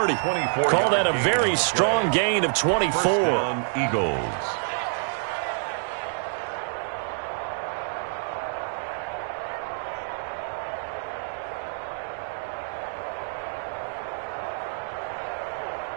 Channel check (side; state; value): left; silent; digital silence